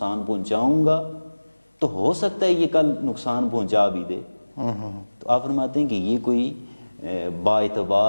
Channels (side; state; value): both; inverted; correlation -1.00